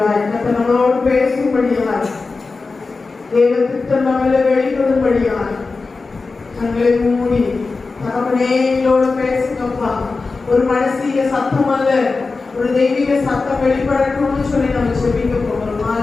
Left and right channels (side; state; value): right; quieter; 4.0 dB